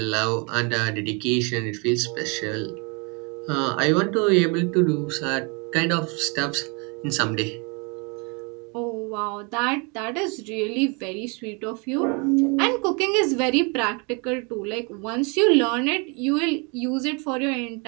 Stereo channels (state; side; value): quieter; left; 32.3 dB